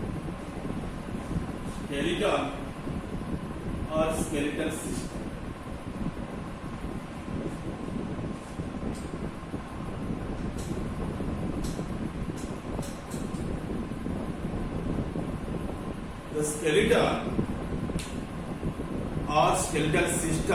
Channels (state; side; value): identical; both; correlation 1.00